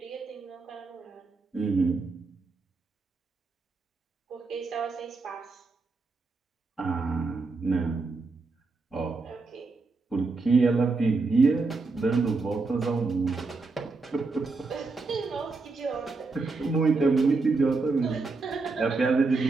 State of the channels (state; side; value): quieter; left; 3.9 dB